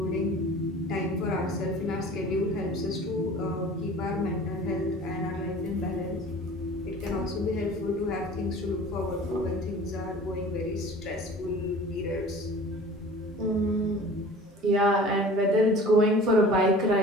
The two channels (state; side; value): normal; both; correlation 0.43